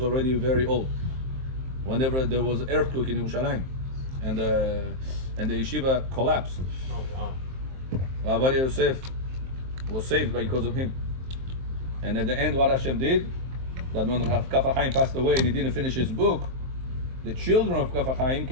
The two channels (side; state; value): left; late; 23 ms